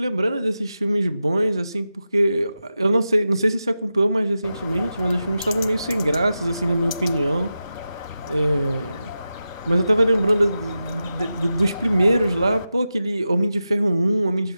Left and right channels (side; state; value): both; inverted; correlation -0.91